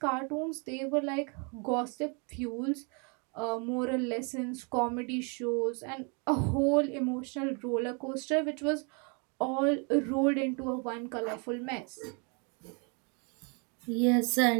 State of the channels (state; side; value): quieter; left; 35.0 dB